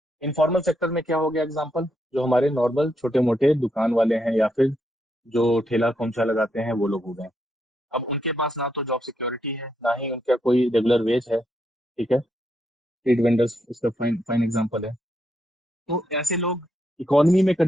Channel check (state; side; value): normal; both; correlation 0.79